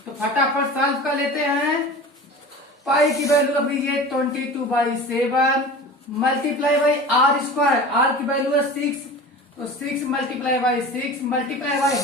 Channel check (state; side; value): normal; both; correlation 0.36